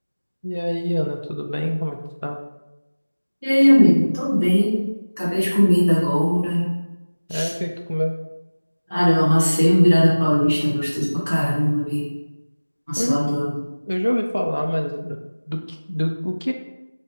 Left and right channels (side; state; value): both; inverted; correlation -1.00